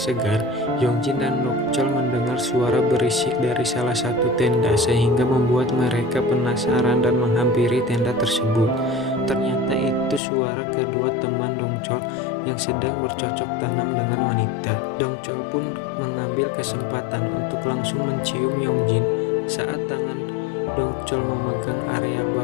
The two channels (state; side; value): drops out; right; at 10.2 s